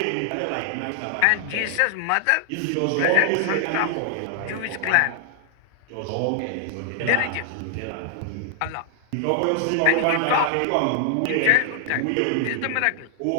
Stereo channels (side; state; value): both; different; correlation 0.00